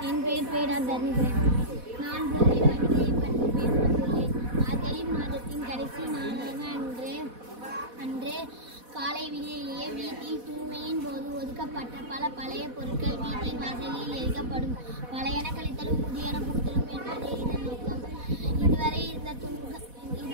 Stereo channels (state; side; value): late; left; 4.1 ms